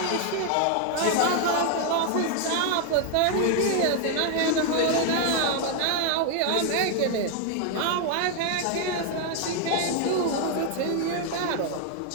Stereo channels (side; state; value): both; different; correlation 0.00